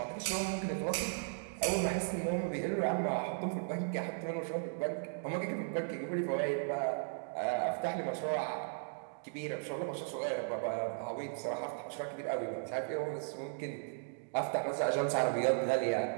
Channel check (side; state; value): left; silent; digital silence